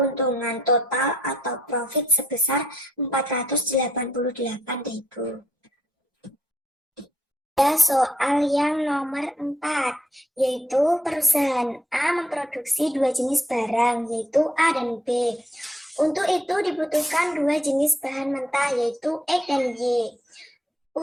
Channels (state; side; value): normal; both; correlation 0.73